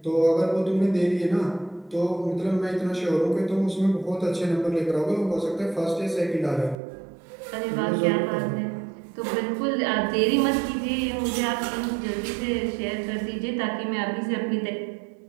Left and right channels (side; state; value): left; drops out; at 6.8 s